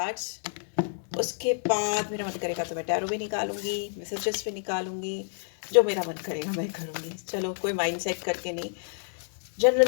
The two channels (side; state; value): right; silent; digital silence